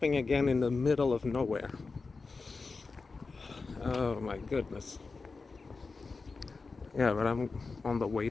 again in the middle of nowhere. Oh my goodness. Yeah, but I'm on the way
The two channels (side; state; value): right; quieter; 4.2 dB